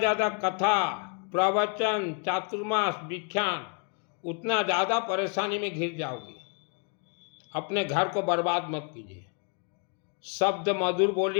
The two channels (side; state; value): right; quieter; 37.8 dB